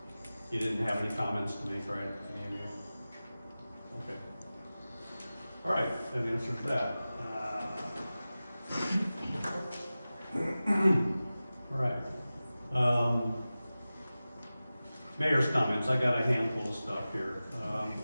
You didn't have any comments to make, right, any of you? Okay. All right, that answers that. All right. Mayor's comments, I got a handful of stuff here.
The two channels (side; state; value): both; inverted; correlation -0.96